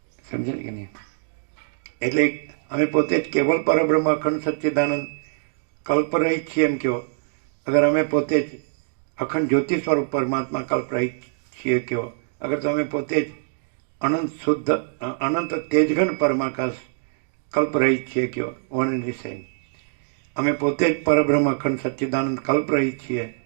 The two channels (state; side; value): silent; left; digital silence